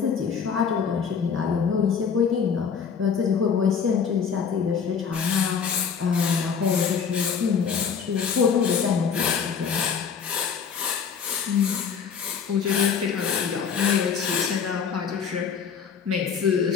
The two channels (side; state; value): right; quieter; 6.7 dB